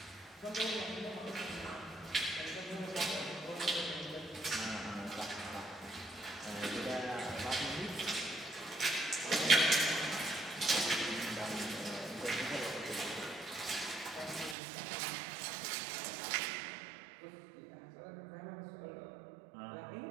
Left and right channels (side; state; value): left; drops out; at 14.6 s